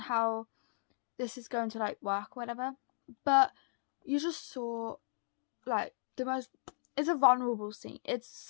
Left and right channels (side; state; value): right; silent; digital silence